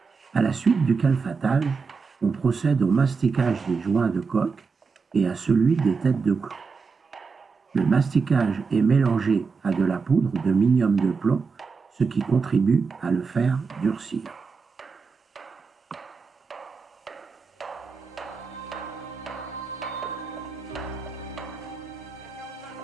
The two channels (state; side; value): quieter; left; 5.0 dB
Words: À la suite du calfatage, on procède au masticage des joints de coque et à celui des têtes de clous. Le masticage est mélangé à de la poudre de minium de plomb, ce qui contribue à le faire durcir.